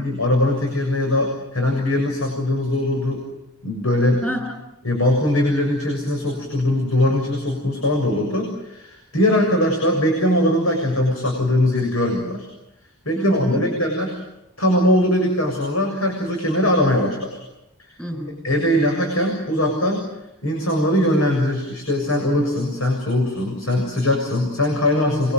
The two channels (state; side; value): normal; both; correlation 0.35